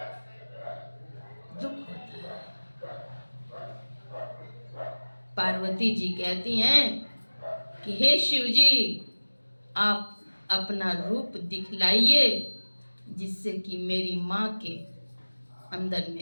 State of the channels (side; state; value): both; inverted; correlation -1.00